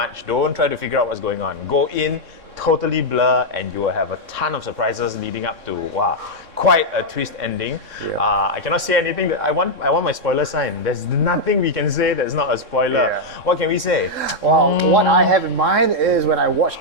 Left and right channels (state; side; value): late; left; 3.6 ms